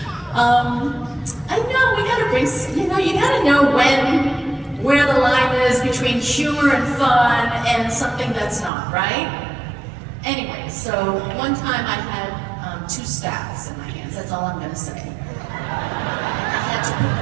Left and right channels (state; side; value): drops out; left; at 8.7 s